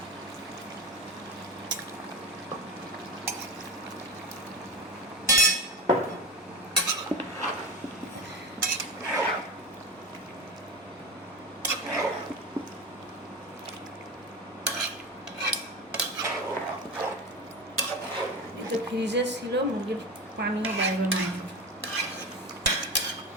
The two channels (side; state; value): both; normal; correlation 0.24